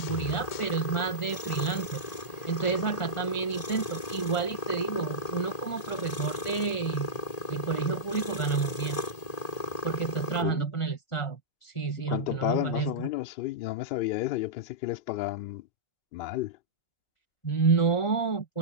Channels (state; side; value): late; right; 1.8 ms